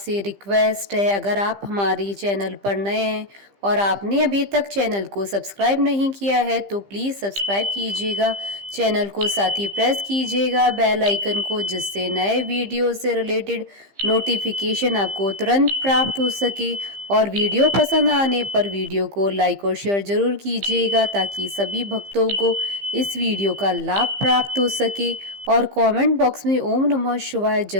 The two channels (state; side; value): late; left; 15 ms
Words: रिक्वेस्ट है, अगर आप हमारी चैनल पर नए हैं और आपने अभी तक चैनल को सब्सक्राइब नहीं किया है तो प्लीज़ सब्सक्राइब कीजिएगा चैनल को, साथ ही प्रेस कीजिएगा बेल आइकन को, जिससे नए वीडियो से रिलेटेड नोटिफिकेशन आपको तुरंत प्राप्त हो सके। और वीडियो पसंद आने पर वीडियो को लाइक और शेयर जरूर कीजिएगा ताकि सभी भक्तों को इस वीडियो का लाभ प्राप्त हो सके। और कमेंट बॉक्स में ओम नमः शिवाय